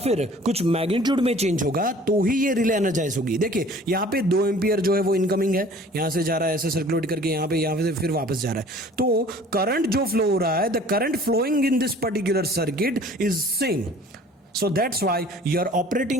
कुछ मैग्नीट्यूड में चेंज होगा, तो ही ये रिले एनर्जाइज होगी। देखिए यहाँ पे 2 एम्पियर जो है वो इनकमिंग है, यहाँ से जा रहा है ऐसे सर्कुलेट करके यहाँ पे से फिर वापस जा रहा है, तो करंट जो फ्लो हो रहा है, the current flowing in this particular circuit is same. So that's why your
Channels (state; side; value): normal; both; correlation 0.50